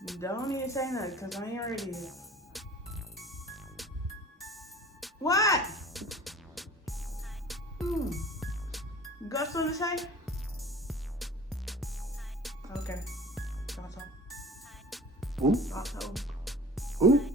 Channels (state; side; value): normal; both; correlation 0.43